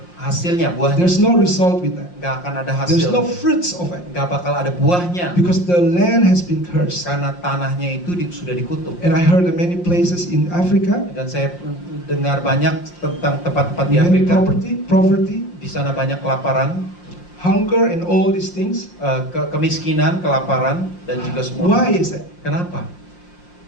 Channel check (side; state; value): right; late; 5.7 ms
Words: hasilnya, buahnya. There's no result with that. Nggak akan ada There's hasil. no fruits of it Nggak bakal ada buahnya. because the land has been cursed. Karena tanahnya itu sudah dikutuk. And I heard of many places in Africa, Dan saya dengar banyak tentang tempat-tempat di many Afrika. poverty, Di sana banyak kelaparan, hunger, and all these things. kemiskinan, kelaparan, dan juga semua. Why is that? Kenapa?